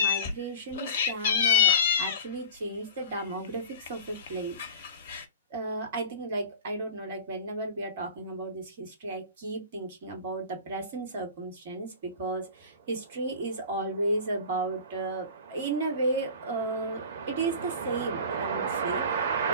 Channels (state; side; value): inverted; both; correlation -0.35